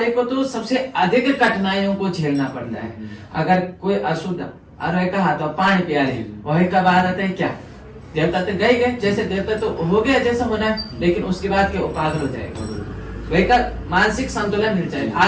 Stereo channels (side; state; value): both; identical; correlation 1.00